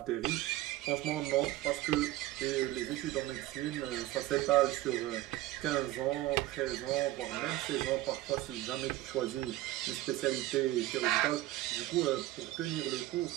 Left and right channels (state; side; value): quieter; left; 16.1 dB